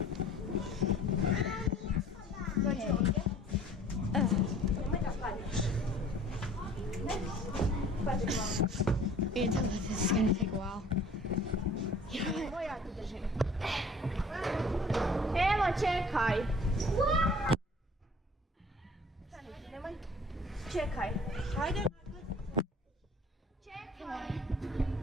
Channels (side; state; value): both; normal; correlation 0.51